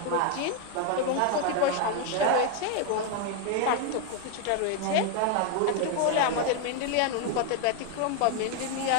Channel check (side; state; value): both; different; correlation 0.01